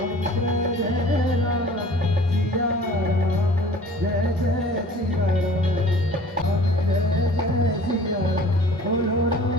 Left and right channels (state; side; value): normal; both; correlation 0.47